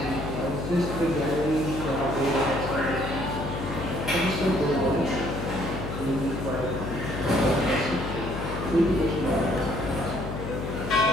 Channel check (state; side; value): noise; left; hum, 6 dB below the sound